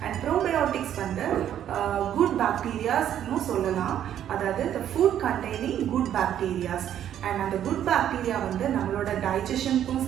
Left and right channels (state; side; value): quieter; left; 10.5 dB